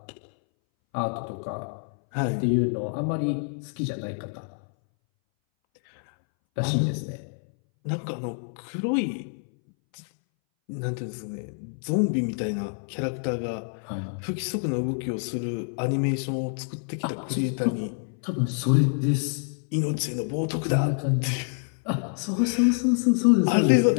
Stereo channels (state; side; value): silent; right; 60 dB below the other